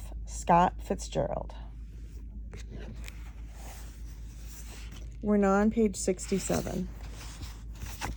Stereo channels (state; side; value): identical; both; correlation 1.00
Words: Scott Fitzgerald. We're now on page 67.